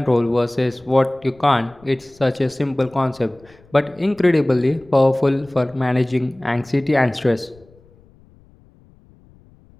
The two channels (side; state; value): left; noise; rumble, 28 dB below the sound